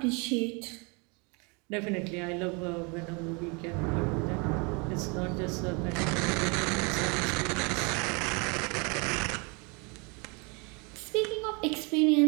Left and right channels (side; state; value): left; quieter; 31.3 dB